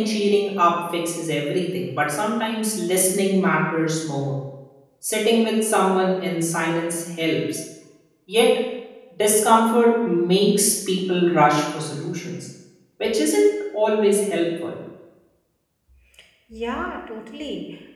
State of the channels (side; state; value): both; identical; correlation 1.00